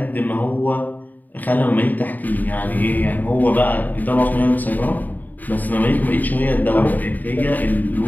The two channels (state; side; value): late; right; 0.084 ms